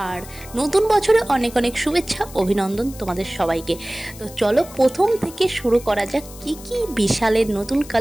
আর নতুন বছরে অনেক অনেক শুভেচ্ছা, অভিনন্দন তোমাদের সবাইকে। তো চলো প্রথম থেকে শুরু করা যাক। কি কি বিশালের নতুন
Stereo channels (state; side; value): noise; left; hiss, 18 dB below the sound